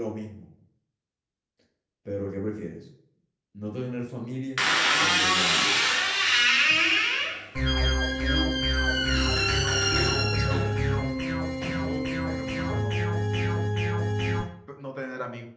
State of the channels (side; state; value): both; identical; correlation 1.00